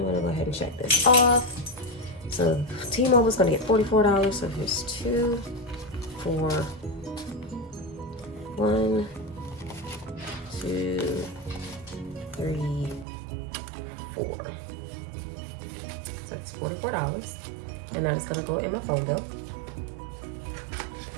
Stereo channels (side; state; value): left; drops out; at 13.1 s